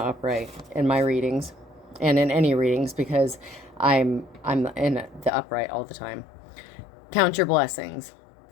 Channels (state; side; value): drops out; right; at 5.3 s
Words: in my readings and in any readings because I'm in the upright all the time. Count your blessings.